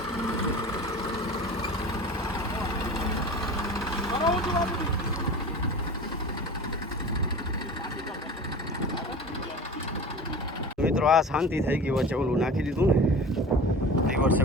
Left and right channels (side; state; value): both; normal; correlation 0.36